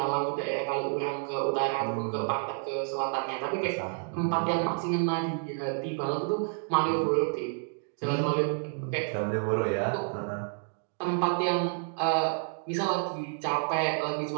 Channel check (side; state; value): left; silent; 58 dB below the other